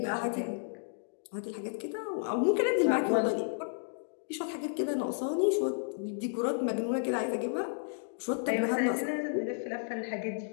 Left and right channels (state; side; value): silent; right; digital silence